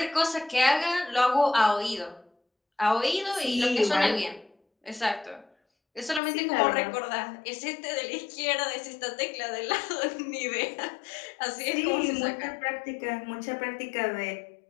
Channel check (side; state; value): right; drops out; at 6.2 s